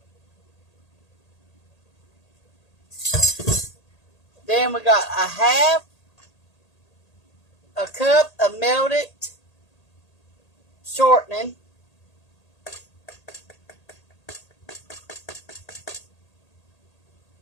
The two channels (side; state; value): right; late; 1.8 ms